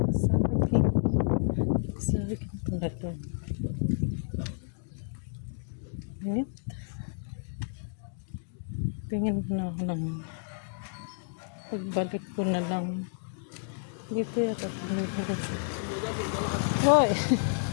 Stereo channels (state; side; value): silent; right; digital silence